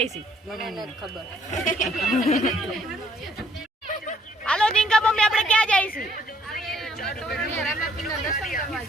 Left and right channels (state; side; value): normal; both; correlation 0.66